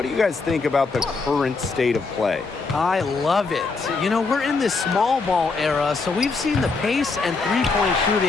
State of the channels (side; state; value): right; quieter; 4.2 dB